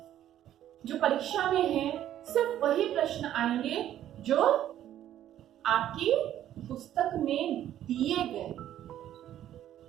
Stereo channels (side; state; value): left; quieter; 11.8 dB